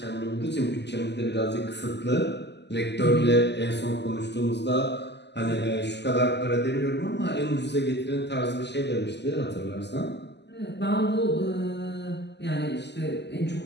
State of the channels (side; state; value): right; late; 0.50 ms